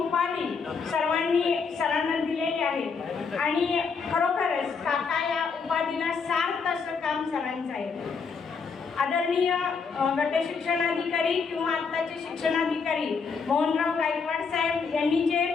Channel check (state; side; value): quieter; right; 5.3 dB